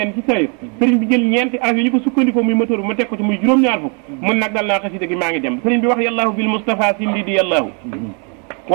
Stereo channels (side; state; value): left; quieter; 36.8 dB